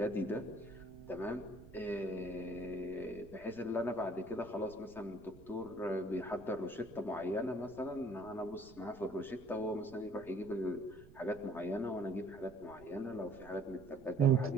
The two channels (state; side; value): noise; right; rumble, 20 dB below the sound